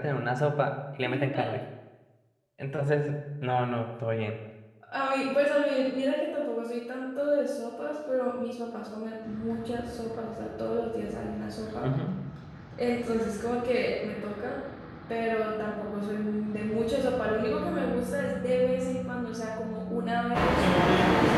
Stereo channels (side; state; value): both; identical; correlation 1.00